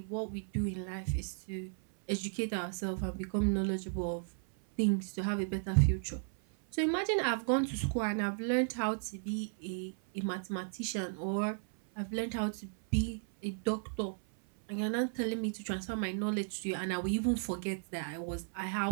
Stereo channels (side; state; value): left; silent; 55 dB below the other